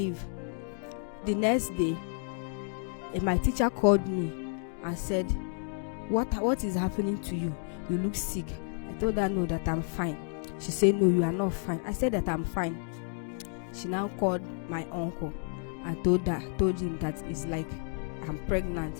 The next day, my teacher called me and said, what is happening to you? You look sick. I told her no, that I'm fine. She said, no, you are not fine. I said that I'm fine. She now called my uncle and told him that it's like I'm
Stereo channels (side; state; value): right; silent; 57 dB below the other